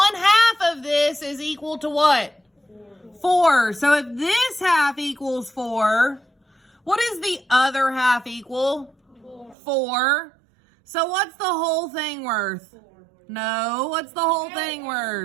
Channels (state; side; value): drops out; left; at 9.6 s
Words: of this is equal to what? 4. So if this half equals 4, what is the other half equal? 4. So what's the whole thing worth? No, what's the whole thing